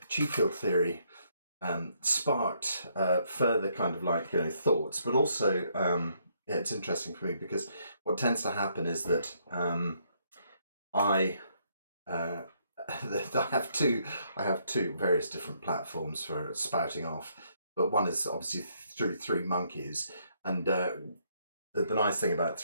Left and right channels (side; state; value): both; inverted; correlation -0.72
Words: field theory sparked further kind of thoughts, but also yeah, it's interesting for me because what tends to happen is that I have two various different platforms for spouting off, but one is obviously through Three Monkeys, and the nice thing about